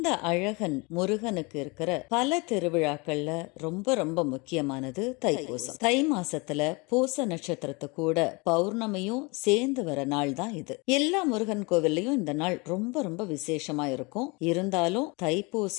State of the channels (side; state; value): right; quieter; 27.9 dB